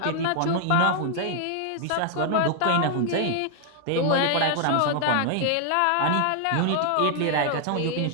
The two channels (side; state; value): both; different; correlation 0.00